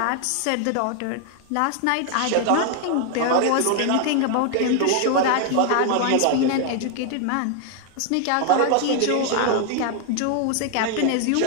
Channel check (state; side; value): different; both; correlation 0.00